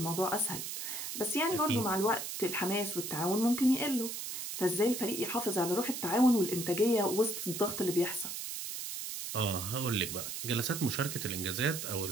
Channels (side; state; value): right; noise; hiss, 5 dB below the sound